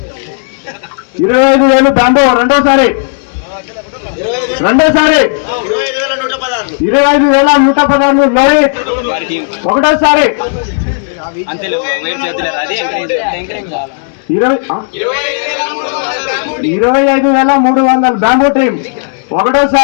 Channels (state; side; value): silent; right; digital silence